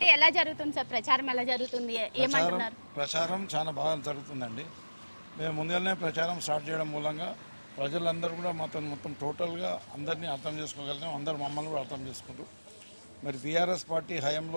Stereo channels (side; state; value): both; inverted; correlation -1.00